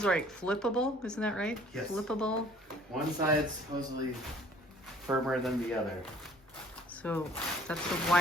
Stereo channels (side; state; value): both; normal; correlation 0.54